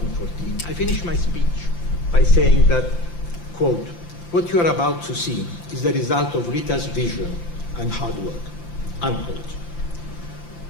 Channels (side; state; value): right; late; 5.8 ms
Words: I finished my speech by saying that, quote, "What you are about to see is the result of Rita's vision and hard work," unquote.